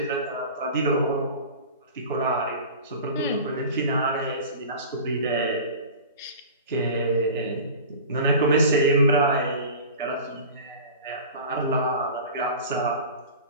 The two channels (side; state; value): both; inverted; correlation -0.37